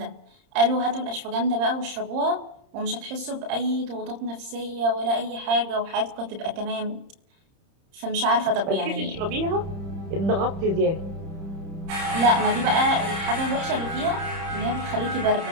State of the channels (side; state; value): left; late; 30 ms